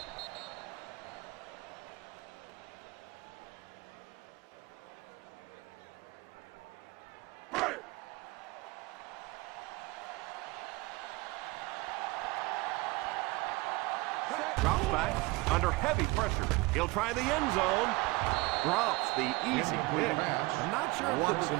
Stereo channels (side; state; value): left; quieter; 23.3 dB